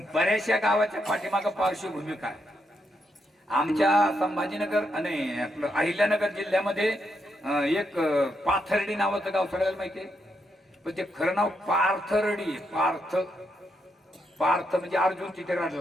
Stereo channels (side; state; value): both; normal; correlation 0.80